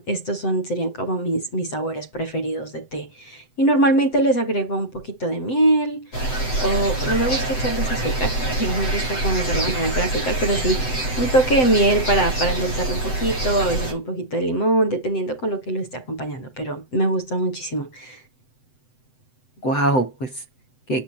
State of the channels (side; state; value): right; late; 7.8 ms